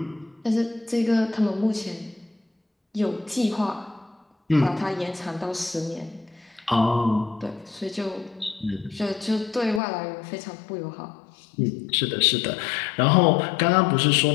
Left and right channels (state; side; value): drops out; right; at 9.8 s